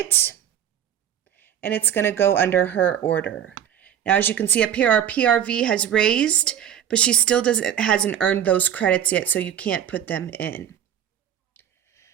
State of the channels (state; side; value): quieter; left; 9.8 dB